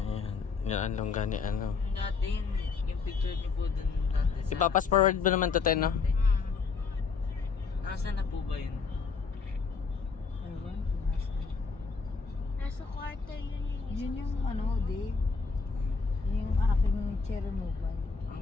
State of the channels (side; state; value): right; quieter; 5.0 dB